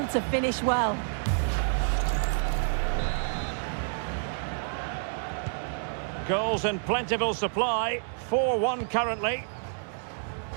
to finish well. Goals in plentiful supply, 4-1 currently.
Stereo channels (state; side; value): silent; left; digital silence